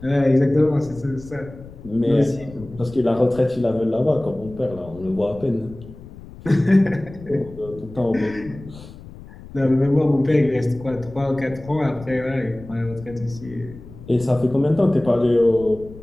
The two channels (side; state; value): left; noise; rumble, 17 dB below the sound